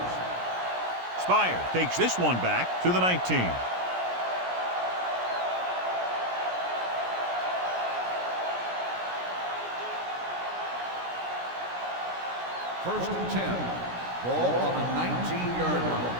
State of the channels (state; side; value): late; left; 17 ms